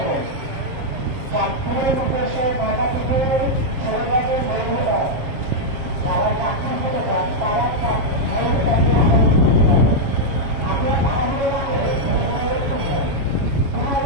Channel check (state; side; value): late; left; 7.5 ms